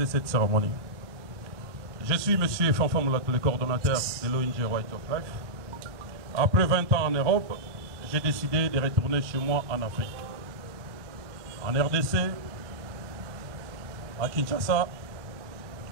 cette cérémonie. Je suis M. Fanfa Moulatou, le coordonnateur de l'ONG Right of Life. Après 20 ans en Europe, j'ai décidé de retourner chez moi en Afrique. En RDC, à Kinshasa,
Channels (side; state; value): left; late; 1.2 ms